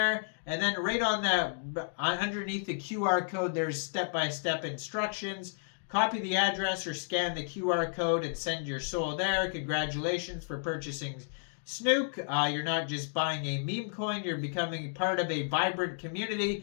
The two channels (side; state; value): right; silent; digital silence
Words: and then right on the underneath the QR code, there's step-by-step instructions. Copy the address or scan the QR code and send your SOL there. Congratulations for purchasing SNUKE. You're not just buying a meme coin, you're becoming part of a vibrant